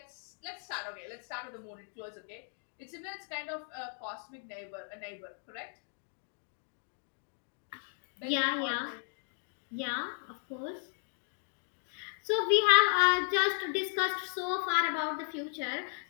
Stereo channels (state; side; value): silent; right; 54 dB below the other